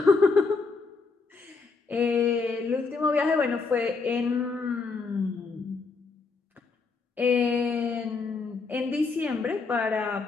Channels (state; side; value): quieter; right; 4.4 dB